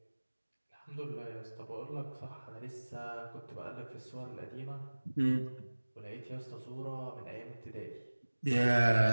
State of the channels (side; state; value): both; inverted; correlation -1.00